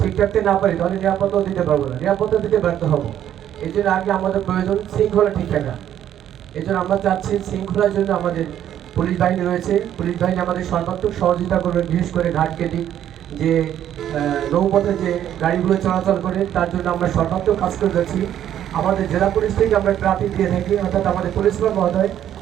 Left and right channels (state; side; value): quieter; left; 10.8 dB